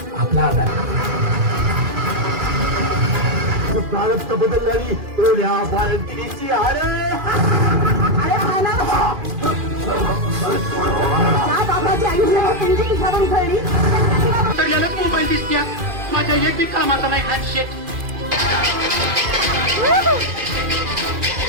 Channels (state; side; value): late; left; 2.4 ms